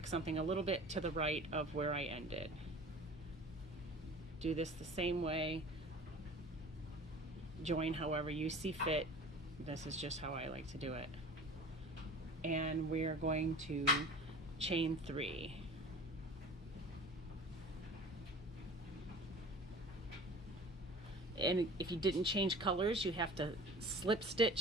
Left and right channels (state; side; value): normal; both; correlation 0.41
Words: something a little bit to the right of where I ended. Do this the same way. Join however you see fit. This is just how I like to do it. And we're going to chain 3. And if you didn't change colors, you have to slip